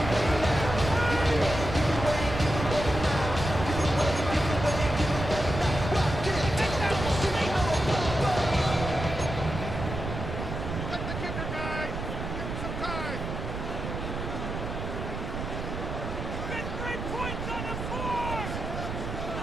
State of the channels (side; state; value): right; noise; rumble, 5 dB below the sound